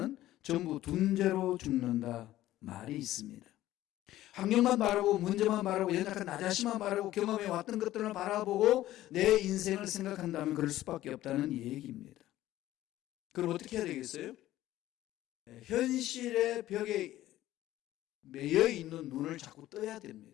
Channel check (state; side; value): quieter; right; 14.7 dB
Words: 전부 둔재로 죽는다 말이 있습니다. 환경만 바라보고 문제만 바라보고 연약한 나 자신만 바라보고 경험해 왔던 것들을 바라보고 내 인생을 생각한다면 그럴 수밖에 없다는 얘기입니다. 그럼 어떻게 해야 되겠어요? 현실의 벽에 매여 있는 눈을 자꾸 떠야